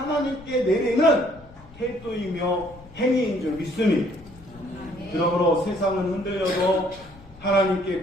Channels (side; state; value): left; noise; rumble, 21 dB below the sound